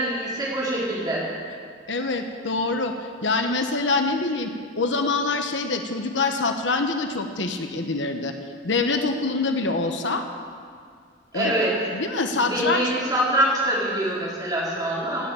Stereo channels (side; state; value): both; normal; correlation 0.15